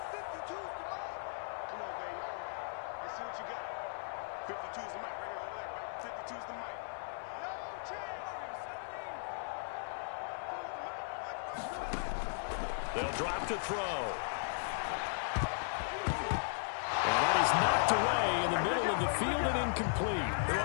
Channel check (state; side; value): silent; right; 53 dB below the other